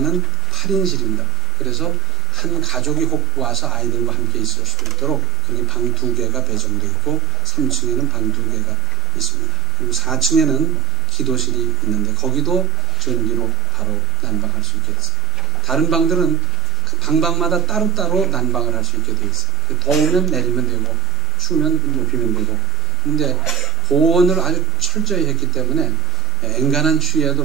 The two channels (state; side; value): normal; both; correlation 0.82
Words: 8인실입니다. 그래서 한 가족이 혹 와서 아이들과 함께 있을 수 있도록 여기 방 2개가 배정되어 있고 3층에는 방 2개가 있습니다. 그리고 4층에는 기도실이 있는데 거기도 전기로 바로 난방할 수 있게 됐어요. 다른 방들은 그 방마다 따로따로 난방을 할 수 있게 되어 있어요. 더우면 내리면 되고 추우면 높이면 되고. 근데 보온을 아주 철저히 했기 때문에 엔간한 추위에도